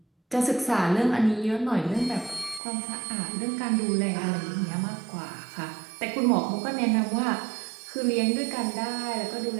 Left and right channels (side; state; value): left; drops out; at 2.6 s